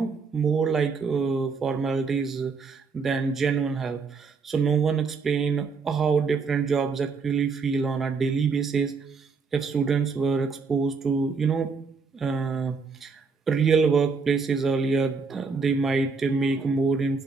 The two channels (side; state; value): left; quieter; 4.9 dB